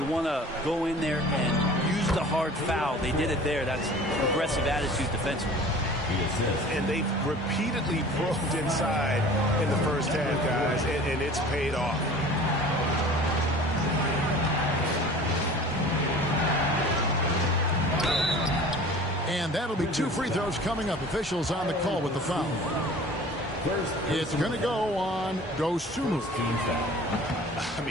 want to go in there and use the hard foul. They did it there. That's aggressive attitude defensively. And they've repeatedly probed inside in the first half, guys, and it's paid off. And that'll be 2 free throws coming up. Officials on the call with the foul. It's going to go on Dosunmu. I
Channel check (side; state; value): both; normal; correlation 0.44